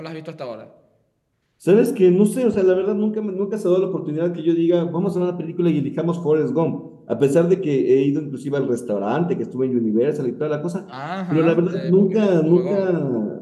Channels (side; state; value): both; identical; correlation 1.00